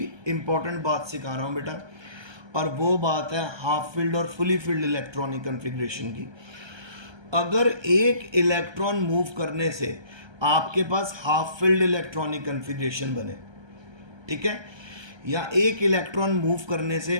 इंपॉर्टेंट बात सिखा रहा हूँ बेटा, और वो बात है हाफ फील्ड और फुली फील्ड इलेक्ट्रॉनिक कन्फिग्रेशन की। अगर एक इलेक्ट्रॉन मूव करने से आपके पास हाफ फील्ड इलेक्ट्रॉनिक कन्फिग्रेशन बने, ठीक है, या एक इलेक्ट्रॉन मूव करने से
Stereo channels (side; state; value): left; late; 1.3 ms